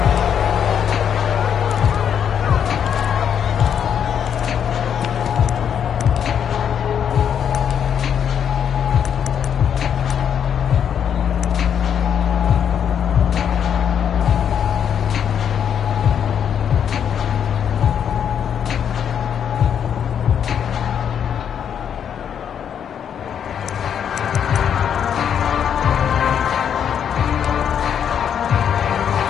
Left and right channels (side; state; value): right; quieter; 8.4 dB